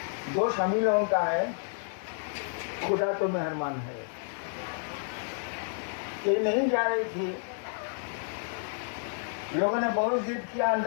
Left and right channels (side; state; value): right; silent; digital silence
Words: दोष हम ही लोगों का है, खुदा तो मेहरबान है। ये नहीं जा रही थी, लोगों ने बहुत जिद किया